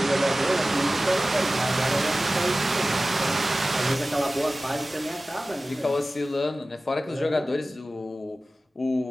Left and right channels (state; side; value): normal; both; correlation 0.96